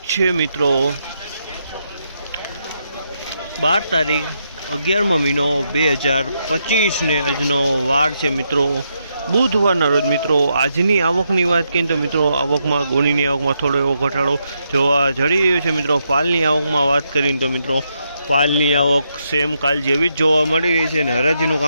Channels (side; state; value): both; inverted; correlation -0.81